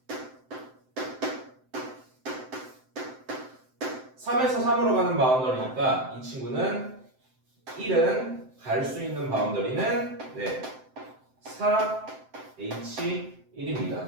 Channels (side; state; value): left; late; 7.7 ms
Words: 3에서 3으로 가는 바운더리니까 이 친구는 1은 갈 수 있는 바운더리는